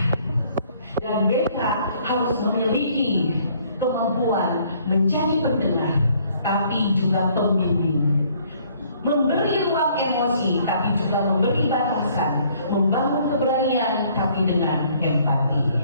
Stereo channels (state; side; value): inverted; both; correlation -0.62